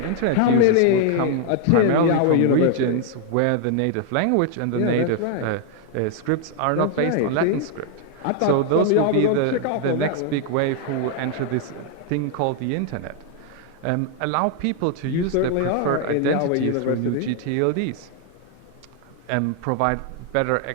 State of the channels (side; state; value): both; different; correlation 0.00